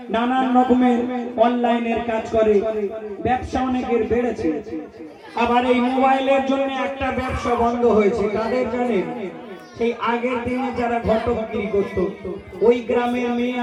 নানান রকমের অনলাইনের কাজ করে ব্যবসা অনেকের বেড়েছে আবার এই মোবাইলের জন্য একটা ব্যবসা বন্ধ হয়েছে কাদের জানেন সেই আগের দিনে যারা ঘটকগিরি করত ওই গ্রামের মেয়ে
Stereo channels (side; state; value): both; identical; correlation 1.00